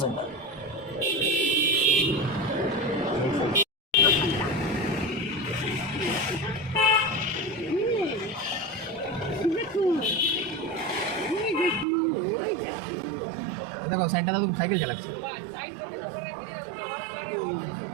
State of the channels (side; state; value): left; drops out; at 11.9 s